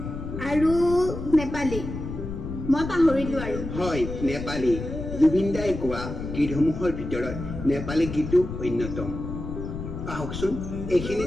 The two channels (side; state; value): left; noise; rumble, 7 dB below the sound